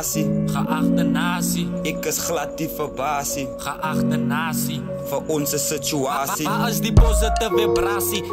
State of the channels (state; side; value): identical; both; correlation 1.00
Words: geachte nasie, Ek is glad die verbasie, geachte nasie. vir onze situasie. Waar is die positieve vibrasie?